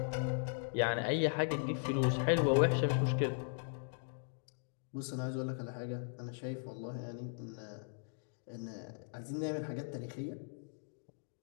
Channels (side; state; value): right; silent; digital silence